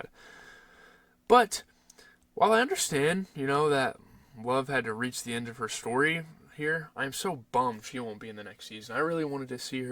But, while I understand, that Love had to reach the end of her story here, I'm so bummed she won't be in the next season. I really wanted to see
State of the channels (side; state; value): both; identical; correlation 1.00